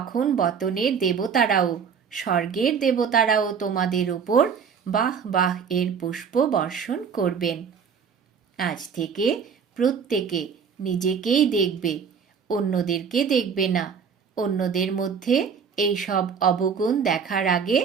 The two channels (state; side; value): quieter; left; 6.6 dB